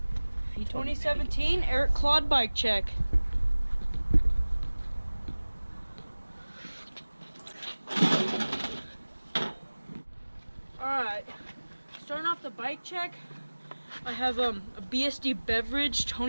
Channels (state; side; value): inverted; both; correlation -1.00